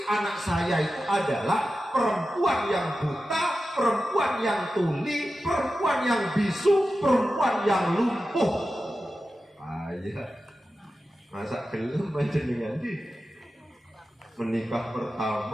anak saya itu adalah perempuan yang buta, perempuan yang tuli, perempuan yang bisu, perempuan yang lumpuh. Ayah, masa gelem panjenengan di menikah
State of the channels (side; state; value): both; normal; correlation 0.93